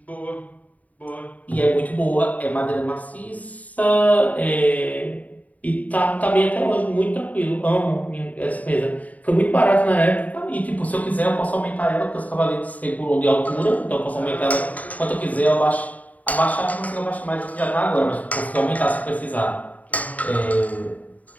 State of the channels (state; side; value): late; right; 0.072 ms